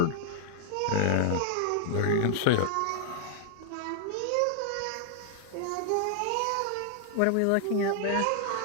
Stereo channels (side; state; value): both; different; correlation 0.00